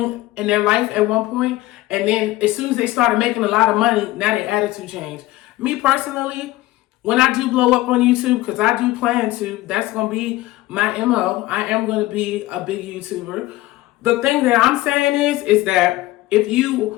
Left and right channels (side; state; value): right; quieter; 17.6 dB